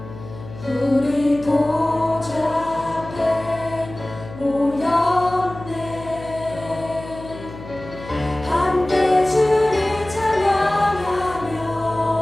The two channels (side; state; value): left; noise; hum, 14 dB below the sound